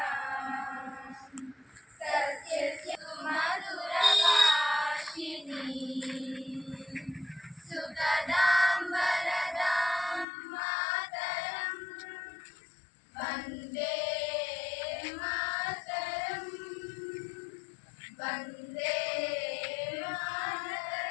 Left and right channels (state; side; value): drops out; right; at 10.2 s